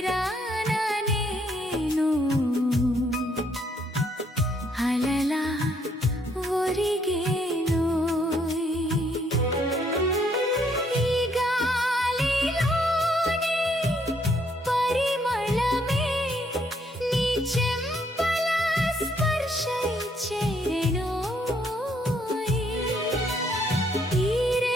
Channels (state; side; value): normal; both; correlation 0.69